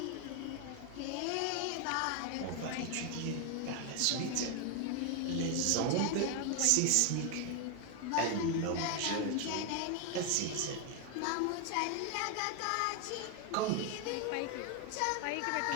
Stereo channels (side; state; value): both; different; correlation 0.01